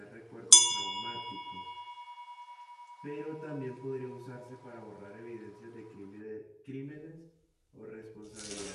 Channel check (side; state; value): both; identical; correlation 1.00